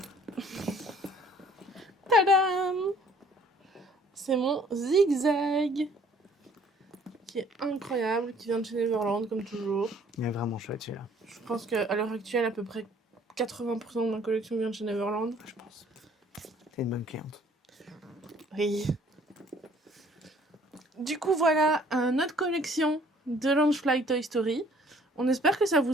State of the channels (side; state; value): both; normal; correlation 0.57